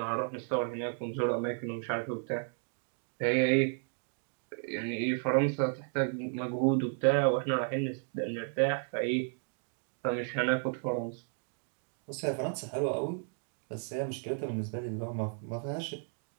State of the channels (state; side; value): silent; left; 55 dB below the other